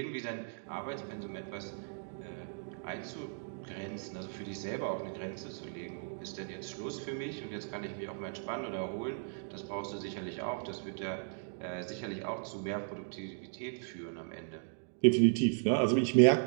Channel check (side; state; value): left; silent; digital silence